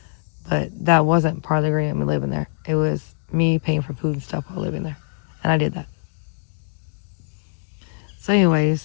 but that wasn't part of the agreement me living there. It was me paying for food and stuff while living there. And I did that. So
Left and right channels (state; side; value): silent; right; 64 dB below the other